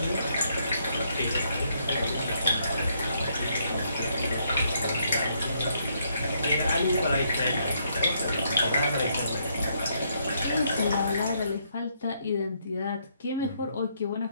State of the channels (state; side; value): inverted; both; correlation -0.73